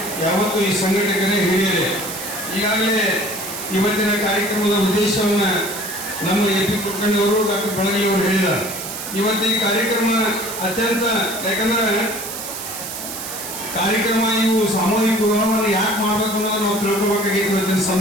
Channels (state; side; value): noise; right; hiss, 8 dB below the sound